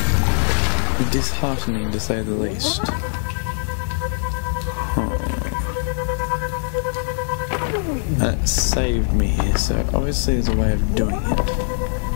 That's disheartening to say the least. That saved me here, so obviously there's a way of doing it.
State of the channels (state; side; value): silent; right; 56 dB below the other